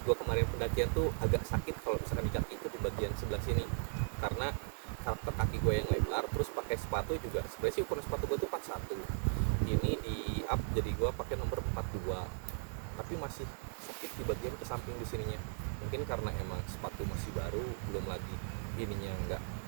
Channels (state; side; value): silent; left; digital silence